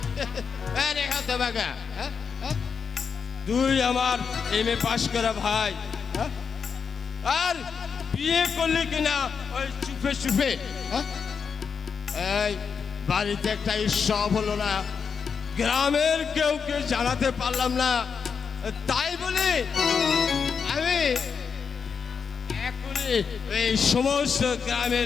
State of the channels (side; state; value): right; quieter; 6.1 dB